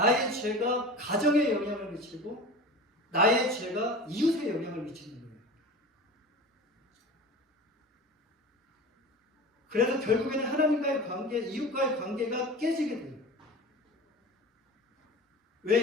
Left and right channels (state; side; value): normal; both; correlation 0.34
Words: 죄가 가정에 영향을 미치고 나의 죄가 이웃에 영향을 미치는 거예요. 그래서 결국에는 하나님과의 관계, 이웃과의 관계가 깨지게 돼요.